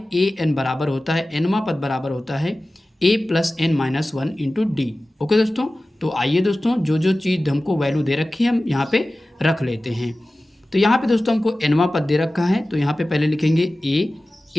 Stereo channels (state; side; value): normal; both; correlation 0.96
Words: a n बराबर होता है, nवां पद बराबर होता है a + n-1 into D. Okay दोस्तों, तो आइए दोस्तों जो जो चीज़ हमको वैल्यू दे रखी है हम यहाँ पे रख लेते हैं। तो यहाँ पे दोस्तों हमको nवां पद दे रखा है, तो यहाँ पे पहले लिखेंगे